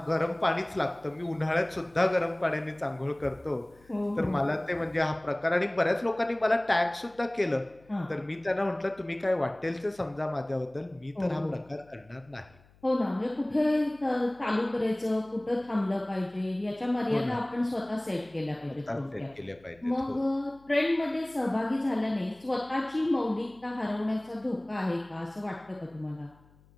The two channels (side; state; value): left; noise; hum, 29 dB below the sound